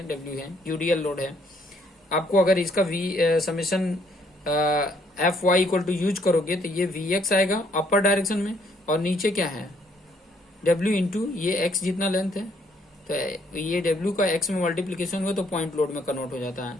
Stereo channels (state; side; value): normal; both; correlation 0.67